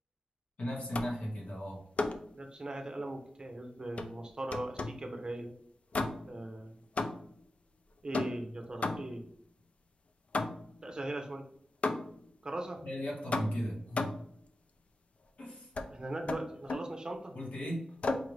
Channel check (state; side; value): normal; both; correlation 0.90